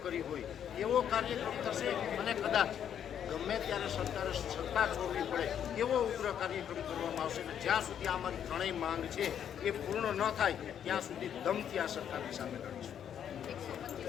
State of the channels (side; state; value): right; quieter; 9.1 dB